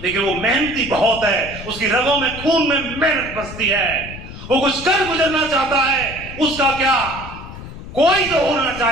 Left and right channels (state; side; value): noise; left; rumble, 13 dB below the sound